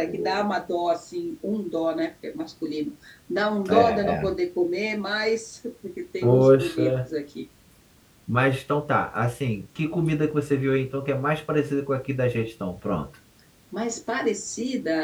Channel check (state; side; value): identical; both; correlation 1.00